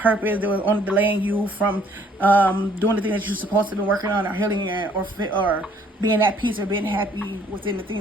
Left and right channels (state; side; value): normal; both; correlation 0.61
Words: They were only delaying you from doing the thing that you're supposed to be working on, or healing, or being at peace, or being happy within the